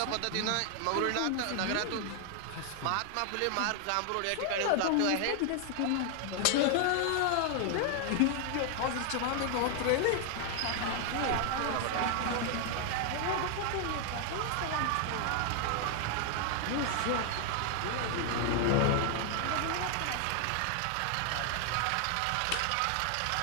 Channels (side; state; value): both; different; correlation 0.00